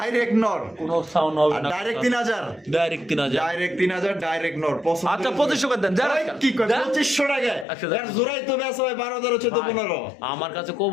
নর, কোনো সাউন্ড হবে আর না। ডাইরেক্ট 3,000। ডাইরেক্ট 3,000। ডাইরেক্ট 3,000, ডাইরেক্ট নর। পছন্দ আচ্ছা হলে- 2500 করে দেন, যারা ওই, কি কয়? যা। 2500 টাকায়? আচ্ছা, যা। এর জোড়াই তো বেচা হয় 12,000, 14, 15। আমার কাছে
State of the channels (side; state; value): right; drops out; at 7.7 s